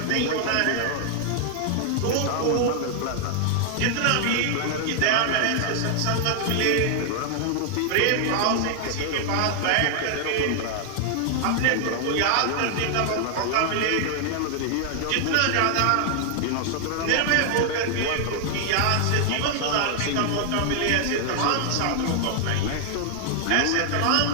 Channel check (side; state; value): both; different; correlation 0.00